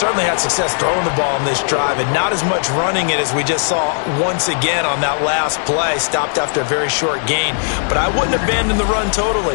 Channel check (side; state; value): right; silent; digital silence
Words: had success throwing the ball on this drive and not as much running it as we just saw once again on that last play. Stopped after a very short gain. But I wouldn't abandon the run totally